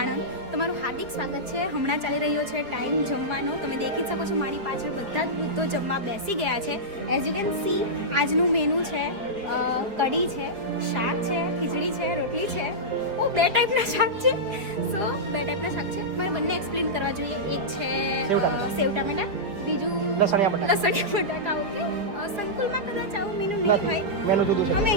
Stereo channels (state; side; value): late; left; 4.9 ms